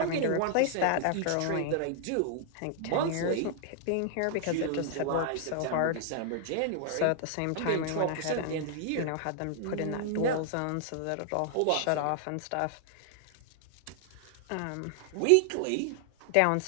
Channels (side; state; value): both; different; correlation -0.01